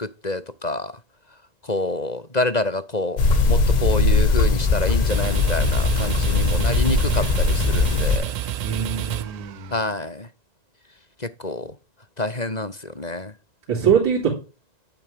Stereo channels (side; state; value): right; late; 2.0 ms